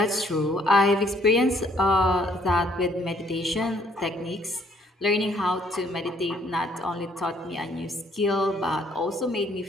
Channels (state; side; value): normal; both; correlation 0.65